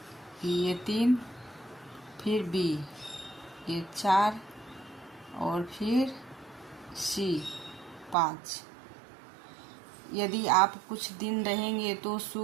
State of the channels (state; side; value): drops out; left; at 8.2 s